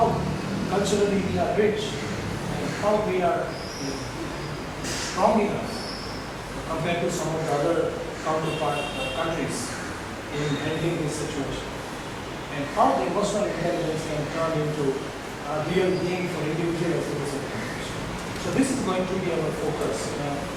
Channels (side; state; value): both; identical; correlation 1.00